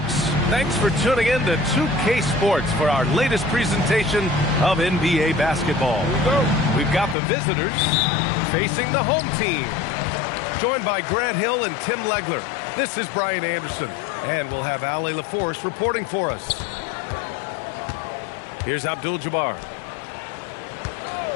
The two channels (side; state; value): right; drops out; at 7.2 s